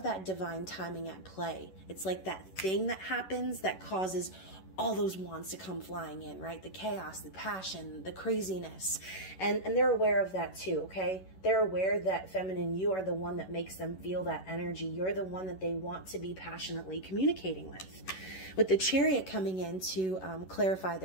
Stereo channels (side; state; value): right; late; 11 ms